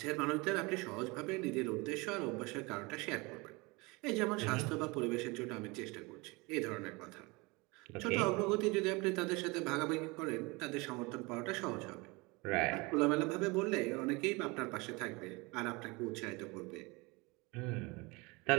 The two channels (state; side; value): quieter; left; 25.7 dB